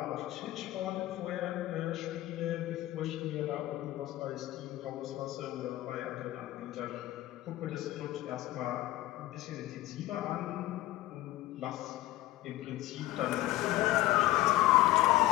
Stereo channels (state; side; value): quieter; right; 16.4 dB